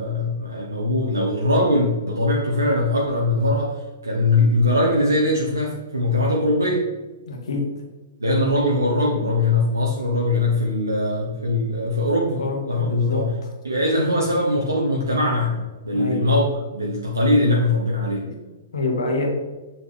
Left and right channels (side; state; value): both; inverted; correlation -0.36